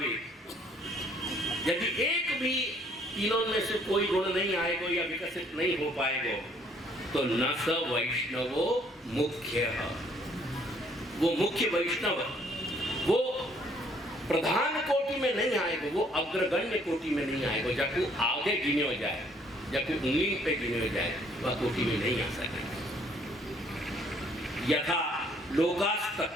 यदि एक भी तीनों में से कोई गुण नहीं आएगा या विकसित नहीं हो पाएगा, तो न स वैष्णवो मुख्य, वो मुख्य वैष्णव वो प्रधान कोटि में नहीं आएगा, वो अग्रगण्य कोटि में नहीं आएगा। जब आगे गिने हो जाए, जब उंगली पे गिने हो जाए, वह कोटि में नहीं आ सकेगा। यथा लोकास्त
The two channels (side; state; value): both; normal; correlation 0.63